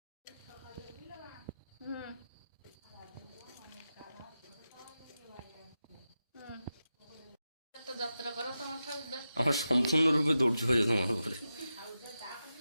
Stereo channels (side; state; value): both; inverted; correlation -0.91